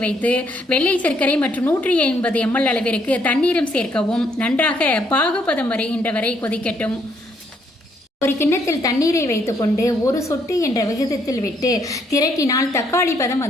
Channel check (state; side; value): normal; both; correlation 0.70